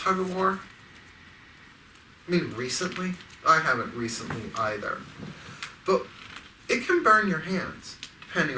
of war? I mean, recently? I haven't recently either. But it can burn your hands, depending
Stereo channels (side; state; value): both; identical; correlation 1.00